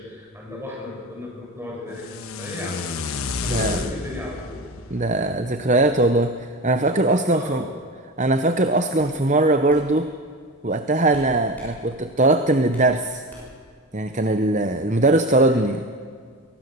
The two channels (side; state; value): both; normal; correlation 0.27